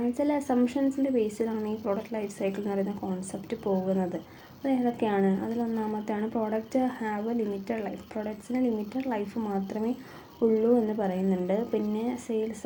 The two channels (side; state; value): both; identical; correlation 1.00